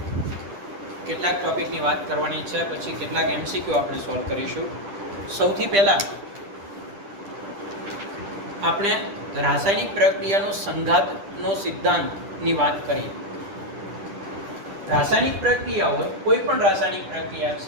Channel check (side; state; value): left; late; 10 ms